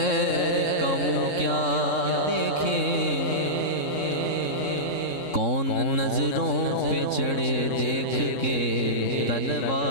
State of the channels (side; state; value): right; late; 3.6 ms